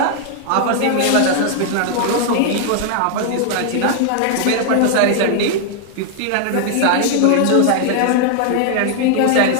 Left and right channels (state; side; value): different; both; correlation 0.00